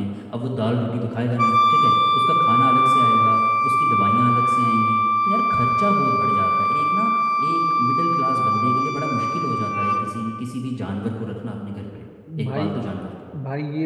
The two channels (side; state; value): both; identical; correlation 1.00